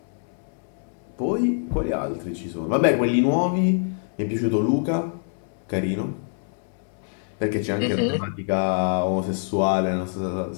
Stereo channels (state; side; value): silent; right; 62 dB below the other